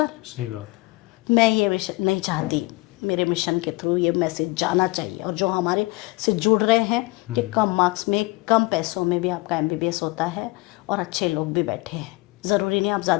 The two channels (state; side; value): quieter; right; 23.2 dB